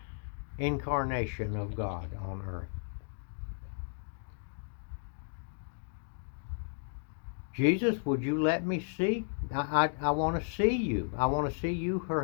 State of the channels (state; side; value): silent; right; digital silence